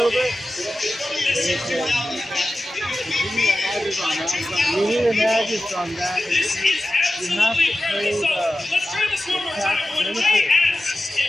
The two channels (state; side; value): normal; both; correlation 0.94